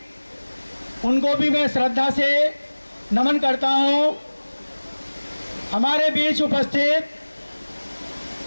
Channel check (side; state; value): both; inverted; correlation -1.00